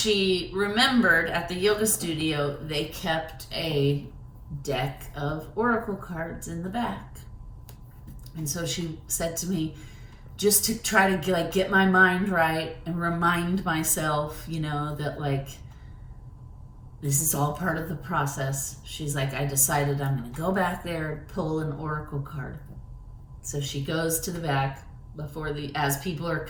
remembered at the yoga studio, they kept a deck of oracle cards in the back. And so she said to me, just to try to get my mind right and remind myself, that like, this is all part of the process. She's like, I decided I'm going to go back there and pull an oracle card. So she goes to the back as people are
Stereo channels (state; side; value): identical; both; correlation 1.00